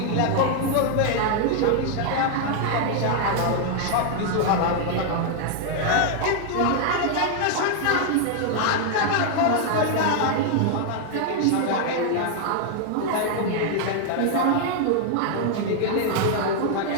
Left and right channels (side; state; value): both; different; correlation 0.00